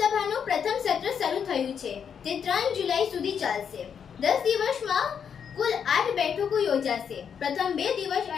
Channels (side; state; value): right; quieter; 7.4 dB